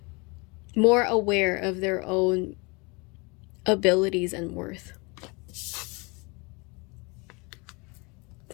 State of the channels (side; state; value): right; quieter; 28.7 dB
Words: more aware of their own abilities and worth.